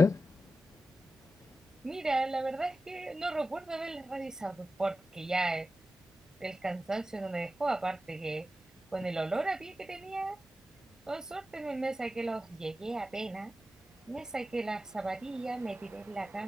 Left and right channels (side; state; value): both; normal; correlation 0.93